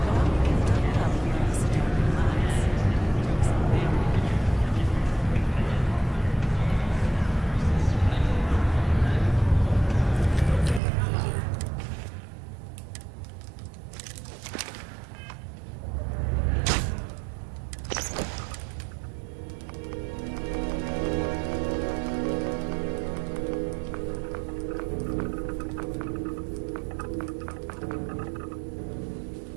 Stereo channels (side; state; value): left; drops out; at 10.8 s